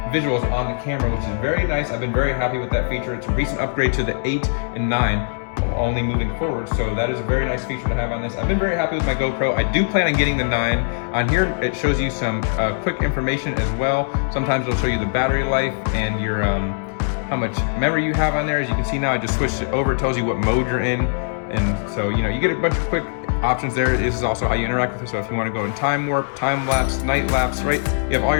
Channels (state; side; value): silent; right; digital silence